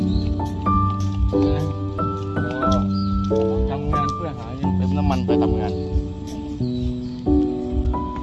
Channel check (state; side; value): identical; both; correlation 1.00